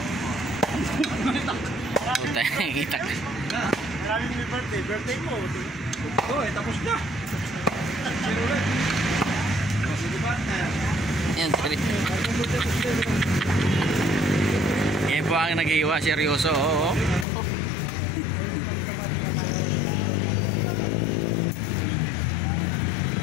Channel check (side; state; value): right; drops out; at 17.2 s